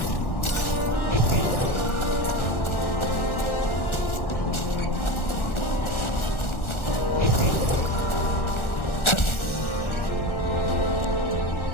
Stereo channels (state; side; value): late; right; 1.4 ms